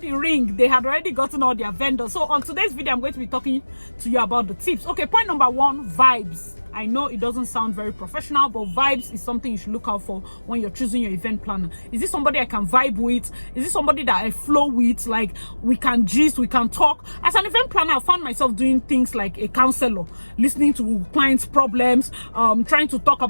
ring, they had already gotten all their vendors. So on today's video, I'm going to be talking to you about the tips. Okay, point number one, vibes. I know it doesn't sound very professional, but vibes is something you should look out for when you're choosing your event planner. Is this somebody I can vibe with? Is this somebody that I flow with? Like, we can gist, we can talk. As an event planner, I found myself doing things like a counselor, listening to clients' problems, trying to talk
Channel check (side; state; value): both; inverted; correlation -1.00